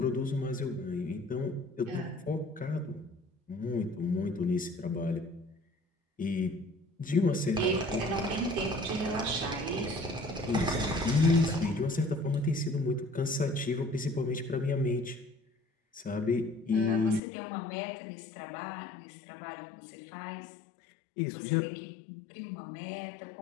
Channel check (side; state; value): right; drops out; at 17.2 s